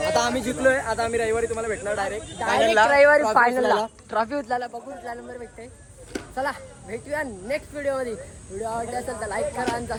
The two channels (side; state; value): both; identical; correlation 1.00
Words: आता आम्ही जिंकलोय. आता आम्ही रविवारी तुम्हाला भेटणार डायरेक्ट रविवारी फायनलला ट्रॉफी उचलायला बघू कुठला नंबर भेटते. चला भेटूया नेक्स्ट व्हिडिओमध्ये. व्हिडिओ आवडला असेल तर लाईक करा आणि